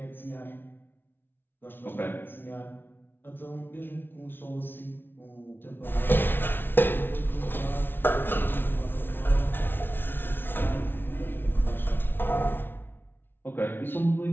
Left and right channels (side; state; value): right; late; 0.10 ms